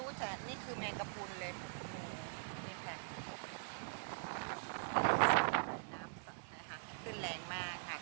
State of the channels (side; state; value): left; silent; digital silence